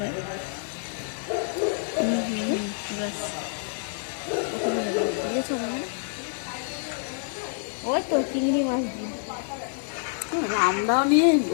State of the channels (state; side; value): silent; right; digital silence